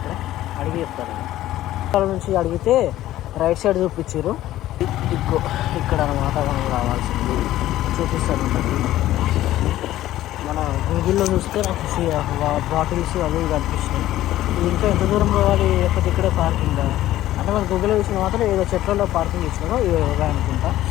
అడిగి చెప్తారు. ఇక్కడ నుంచి అడిగితే రైట్ సైడ్ చూపించారు. ఇక్కడ అనమాట మనం రావాల్సింది చూపిస్తారు. మన గూగుల్లో చూస్తే నాకు బాటిల్స్ అవి కనిపిస్తున్నాయి. ఇంకా ఎంత దూరం పోవాలి, లేకపోతే ఇక్కడే పార్కింగ్ అంటే మన గూగుల్లో చూసిన మాత్రం ఏదో చెట్లలో పార్కింగ్ ఇచ్చినారో ఇవే అనుకుంటా.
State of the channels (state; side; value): quieter; right; 14.3 dB